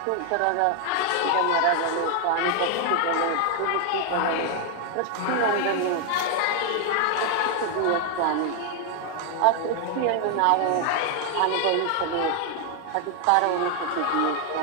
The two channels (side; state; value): both; different; correlation 0.00